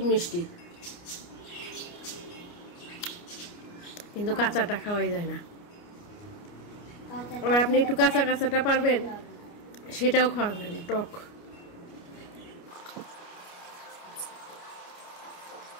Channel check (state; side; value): late; right; 29 ms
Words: মিষ্টি, কিন্তু কাঁচাটা খাওয়াই যায় না। আবার আপনি একটু কাঁচাটা পারবেন, সেটাও খাওয়া যায় না, টক।